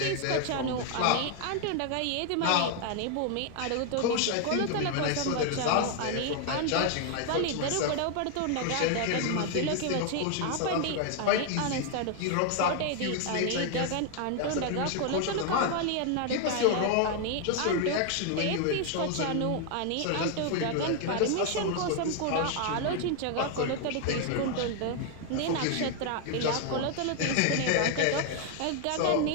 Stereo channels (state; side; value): different; both; correlation 0.00